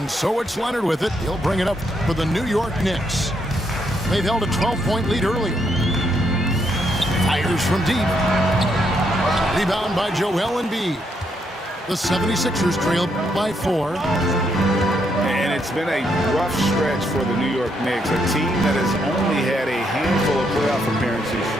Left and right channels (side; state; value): both; normal; correlation 0.76